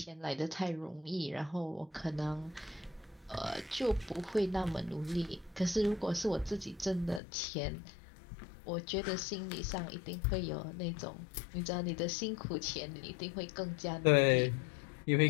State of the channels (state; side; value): drops out; right; at 7.2 s